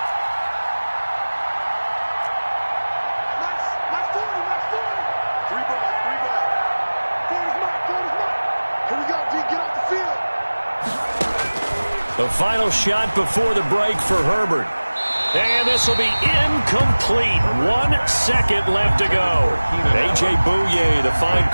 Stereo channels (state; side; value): inverted; both; correlation -1.00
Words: My 40. 3 ball. 40's mine. Here we go, D. Get off the field. The final shot before the break for Herbert. And this will be incomplete. 1 second left to go. A.J. Bouye, the fine